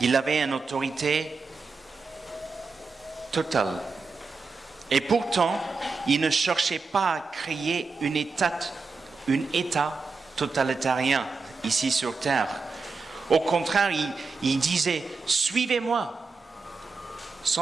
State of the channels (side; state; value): left; quieter; 4.4 dB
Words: avait une autorité totale. Et pourtant, il ne cherchait pas à créer un État totalitarien ici sur terre. Au contraire, il disait « Suivez-moi »